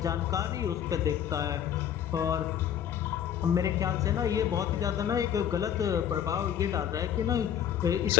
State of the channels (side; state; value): right; quieter; 9.3 dB